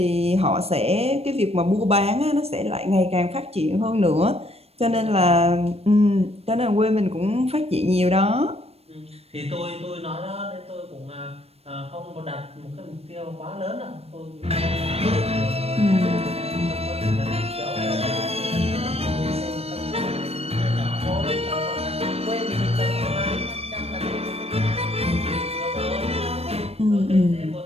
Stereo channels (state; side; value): late; left; 0.29 ms